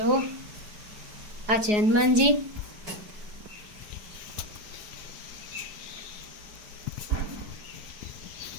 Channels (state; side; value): late; left; 4.8 ms